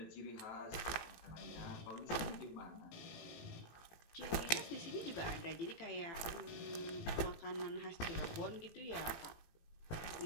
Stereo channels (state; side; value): late; right; 17 ms